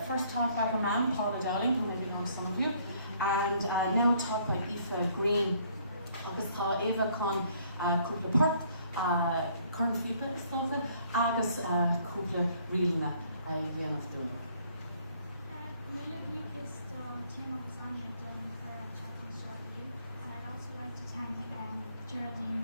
First taught by her mum, Paula Dowling, who maybe know some of you, and now taught by Aoife Green. Agus tá Eva chun cúpla port, chun flipa is tófa, agus cúpla rialna a dhéanamh dúna. Mila Lucas Tim of Lasagna Dublin for chatting short with you, and I'd also like to thank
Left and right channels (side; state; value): both; inverted; correlation -0.63